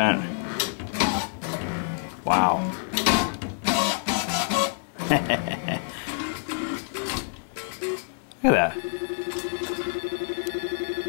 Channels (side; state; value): right; silent; 58 dB below the other